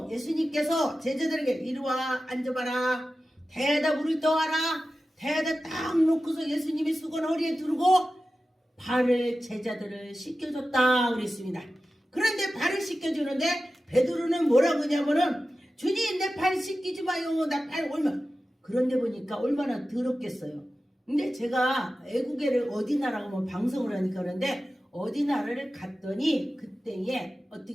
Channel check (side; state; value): both; normal; correlation 0.94